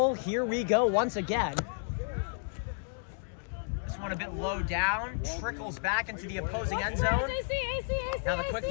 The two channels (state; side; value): silent; right; digital silence